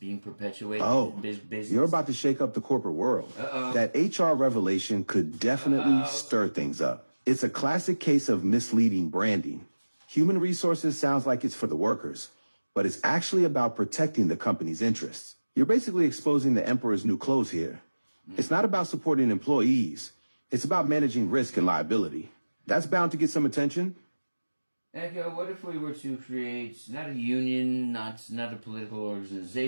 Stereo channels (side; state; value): both; inverted; correlation -1.00